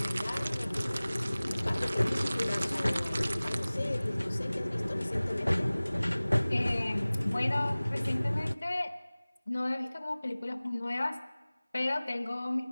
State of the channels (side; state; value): both; inverted; correlation -0.99